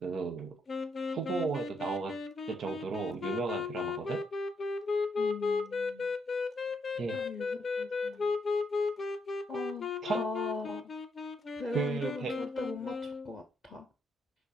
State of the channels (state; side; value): normal; both; correlation 0.77